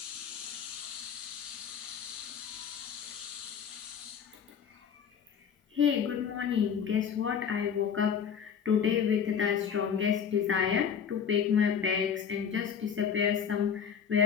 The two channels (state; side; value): quieter; right; 7.5 dB